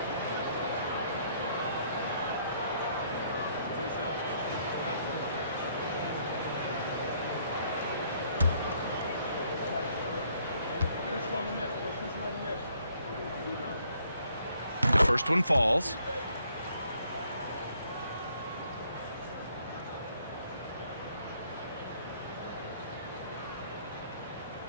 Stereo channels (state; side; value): inverted; both; correlation -0.66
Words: First one falls.